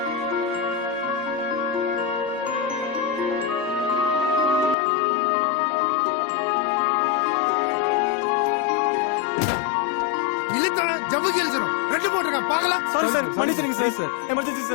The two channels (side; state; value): right; drops out; at 4.8 s